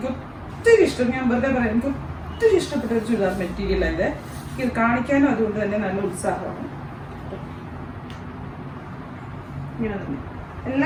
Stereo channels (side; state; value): both; identical; correlation 1.00